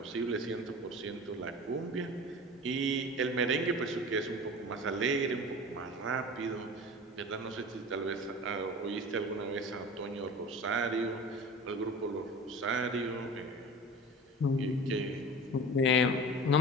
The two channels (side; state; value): both; normal; correlation 0.36